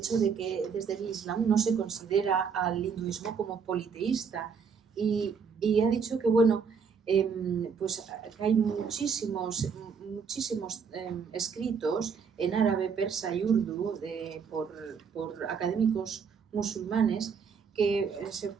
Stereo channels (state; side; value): quieter; left; 6.1 dB